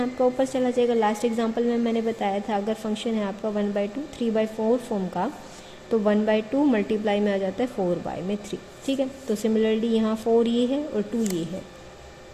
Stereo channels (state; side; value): identical; both; correlation 1.00